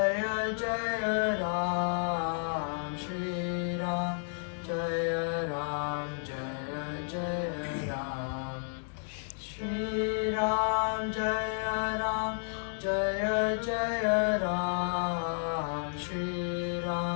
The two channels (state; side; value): silent; right; digital silence